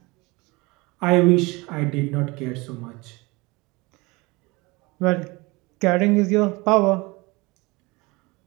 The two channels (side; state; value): left; quieter; 24.4 dB